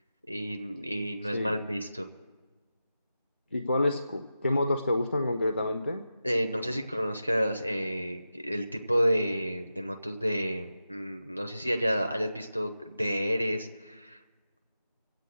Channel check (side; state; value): both; inverted; correlation -0.91